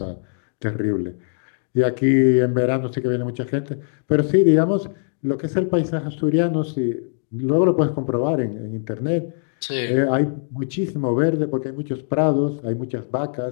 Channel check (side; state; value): right; silent; digital silence